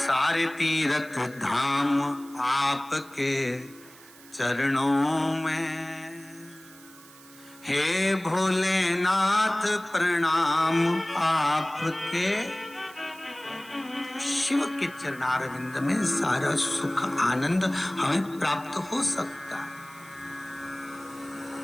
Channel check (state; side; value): noise; right; hiss, 22 dB below the sound